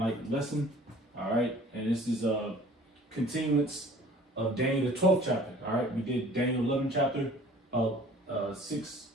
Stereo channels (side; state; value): both; normal; correlation 0.50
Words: lesson. All right, and this is a continuance of Daniel the 12th chapter. All right, we did Daniel 11th chapter of six